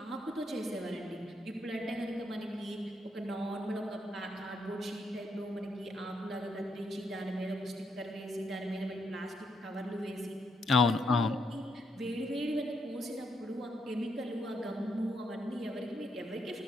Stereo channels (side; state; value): both; normal; correlation 0.77